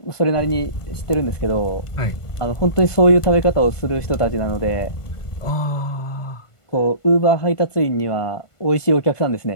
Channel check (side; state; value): right; late; 1.5 ms